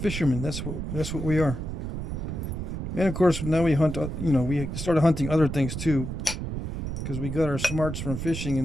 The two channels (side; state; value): right; noise; rumble, 5 dB below the sound